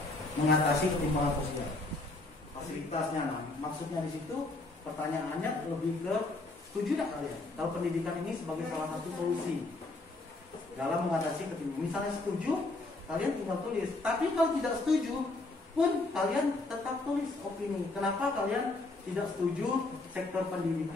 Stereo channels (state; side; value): quieter; right; 3.1 dB